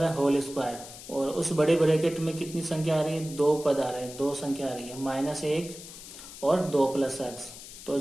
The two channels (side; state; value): left; noise; hiss, 14 dB below the sound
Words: है, होल स्क्वायर, और उस बड़े ब्रैकेट में कितनी संख्या आ रही है, 2 पद आ रहे हैं, 2 संख्या आ रही है, -1 और 2 + x। तो